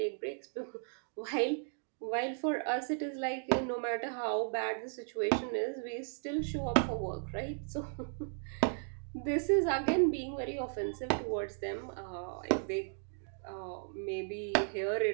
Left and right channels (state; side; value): silent; left; digital silence